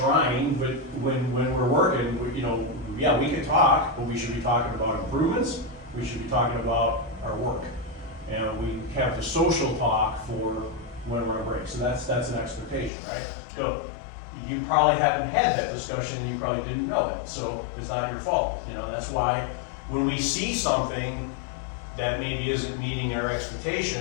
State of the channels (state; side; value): drops out; right; at 12.9 s